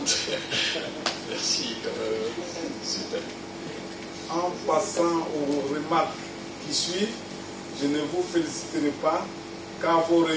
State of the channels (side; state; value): both; identical; correlation 1.00